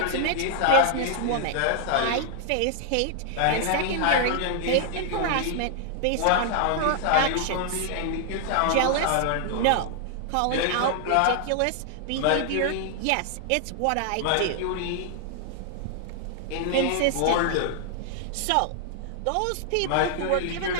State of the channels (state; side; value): different; both; correlation 0.00